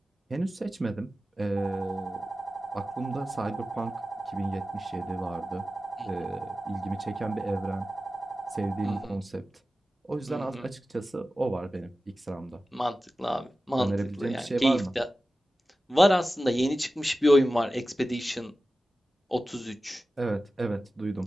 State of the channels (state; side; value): normal; both; correlation 0.94